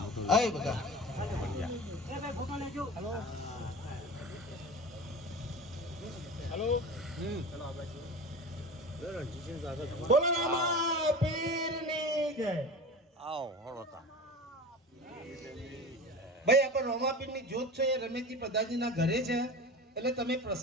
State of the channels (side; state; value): both; normal; correlation 0.32